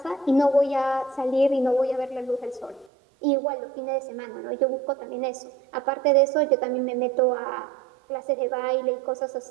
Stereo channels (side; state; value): left; drops out; at 2.9 s